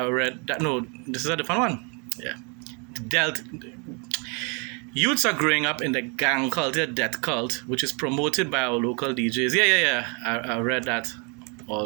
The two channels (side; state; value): left; quieter; 34.9 dB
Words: that. No, this is a different one. Yeah. Youths are growing up in the gang culture, death cult, which is promoted by our local DJs. Yeah. I read that